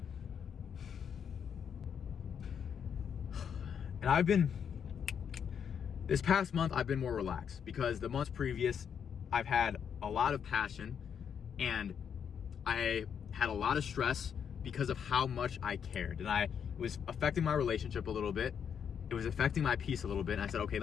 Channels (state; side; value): quieter; right; 7.7 dB